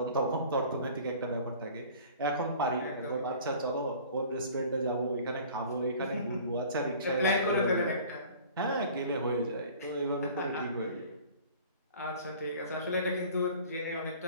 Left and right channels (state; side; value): inverted; both; correlation -0.46